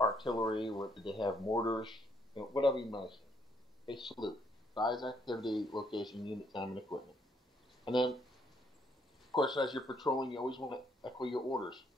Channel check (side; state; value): both; normal; correlation 0.70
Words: artillery? What did they have? Mortars? You know, whatever you might say. They salute. Size, activity, location, unit, time, and equipment. And then, of course, as you're patrolling, you always want to echo your orders.